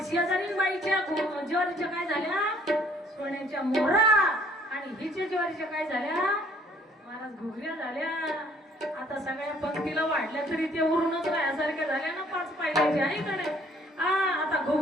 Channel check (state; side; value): normal; both; correlation 0.60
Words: शेजारीनबाईच्या ज्वारीच्या काय झाल्या? सोन्याच्या मोहरा. आणि हिच्या ज्वारीच्या काय झाल्या? महाराज घुगऱ्या झाल्या. आता सगळ्या पंक्तीला वाढल्या तरी ते उरूनच राहण्यासारख्या झाल्या ना 5 पायल्याच्या आहे का नाही? आता